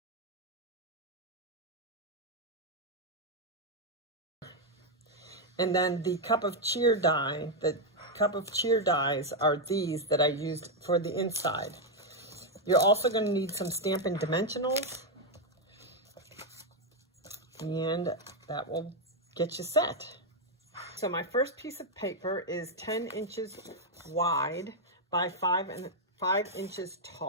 And then the Cup of Cheer die, the Cup of Cheer dies are these that I used for the inside. You're also going to need some Stampin' Dimensionals, and that will get you set. So my first piece of paper is 10 inches wide by 5 inches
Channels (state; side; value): normal; both; correlation 0.02